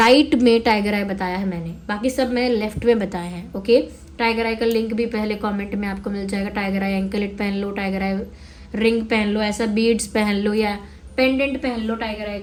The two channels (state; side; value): identical; both; correlation 1.00